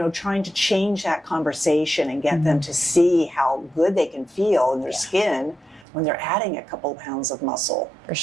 trying to change that conversation and get them to see how good they can feel in their skin when they're adding a couple of pounds of muscle. For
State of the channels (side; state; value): left; drops out; at 5.9 s